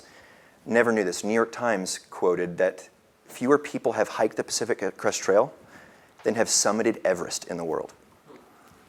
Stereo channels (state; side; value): identical; both; correlation 1.00